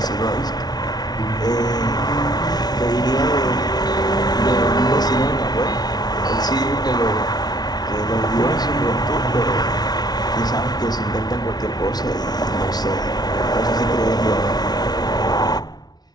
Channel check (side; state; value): right; late; 0.19 ms